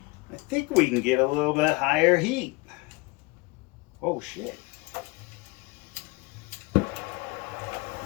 I think we can get a little bit higher heat. Oh shit.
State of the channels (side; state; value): right; quieter; 25.7 dB